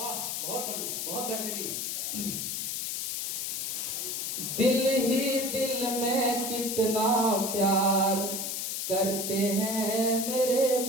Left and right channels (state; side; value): noise; left; hiss, 2 dB below the sound